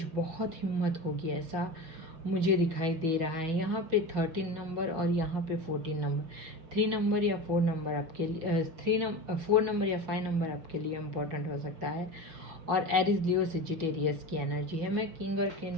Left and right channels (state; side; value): late; left; 6.1 ms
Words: बहुत हिम्मत होगी, ऐसा मुझे दिखाई दे रहा है। यहाँ पे 13 नंबर और यहाँ पे 14 नंबर, 3 नंबर या 4 नंबर आपके लिए 4 नंबर या 5 नंबर आपके लिए इम्पोर्टेंट हो सकता है। और एरिस लियो सेजिटेरियस की एनर्जी है। मैं किंग और